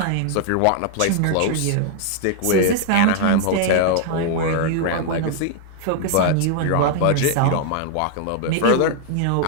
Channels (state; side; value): different; both; correlation 0.00